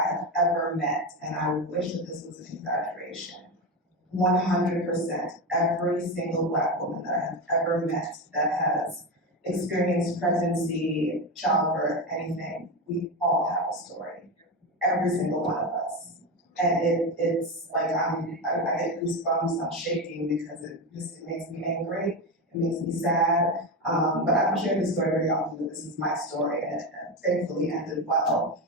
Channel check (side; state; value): both; normal; correlation 0.17